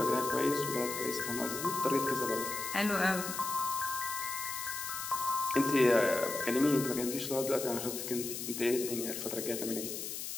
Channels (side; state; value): left; noise; hiss, 6 dB below the sound